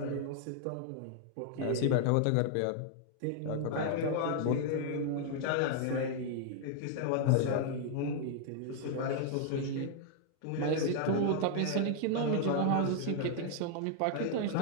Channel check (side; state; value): both; different; correlation -0.01